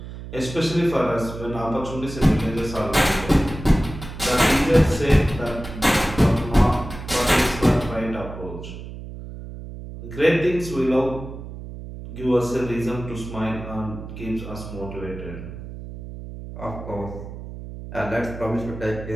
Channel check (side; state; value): right; noise; hum, 11 dB below the sound